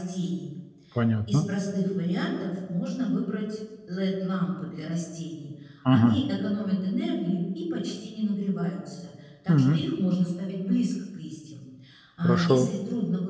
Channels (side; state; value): both; identical; correlation 1.00